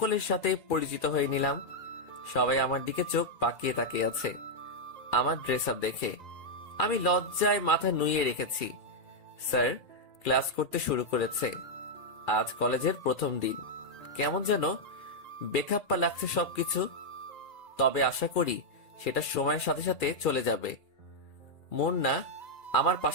সাথে পরিচিত হয়ে নিলাম। সবাই আমার দিকে চোখ পাকিয়ে তাকিয়ে আছে আমার ড্রেস আপ দেখে। আমি লজ্জায় মাথা নুইয়ে রেখেছি। স্যার ক্লাস করতে শুরু করেছে। আজ কলেজের প্রথম দিন। কেমন যেন বেখাপ্পা লাগছে সবকিছু। তবে আশা করি সেটা সময়ের সাথে সাথে চলে যাবে। মুন্না আমার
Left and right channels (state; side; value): late; right; 2.4 ms